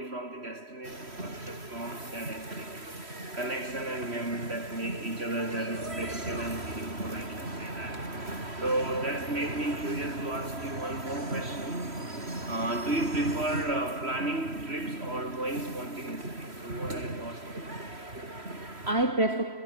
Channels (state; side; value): late; left; 3.1 ms